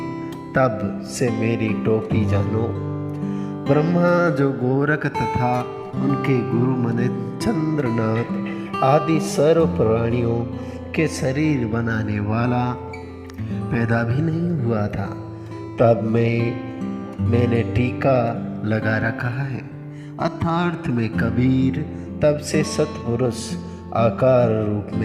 तब से मेरी टोपी जानो। ब्रह्मा जो गोरख तथा उनके गुरु मने चंद्रनाथ आदि सर्व प्राणियों के शरीर बनाने वाला पैदा भी नहीं हुआ था, तब मैंने टीका लगा रखा है। अर्थार्थ में कबीर तब से सतपुरुष आकार रूप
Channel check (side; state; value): both; identical; correlation 1.00